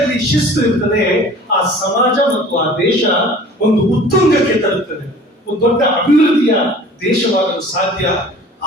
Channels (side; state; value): both; normal; correlation 0.46